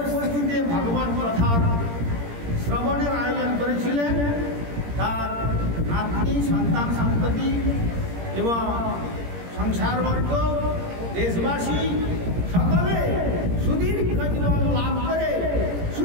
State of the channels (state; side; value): late; left; 17 ms